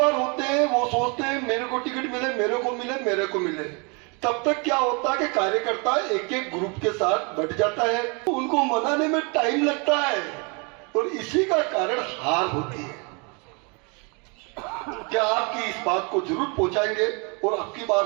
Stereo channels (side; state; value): left; quieter; 32.3 dB